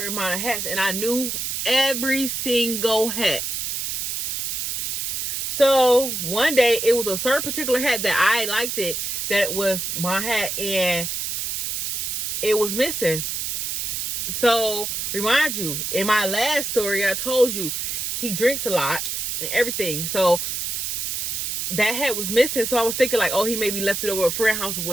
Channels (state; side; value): noise; right; hiss, 2 dB below the sound